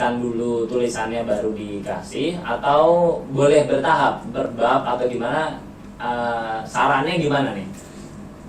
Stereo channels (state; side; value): identical; both; correlation 1.00